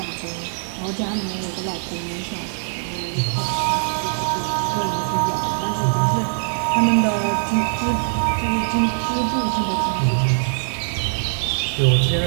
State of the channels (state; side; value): silent; left; 64 dB below the other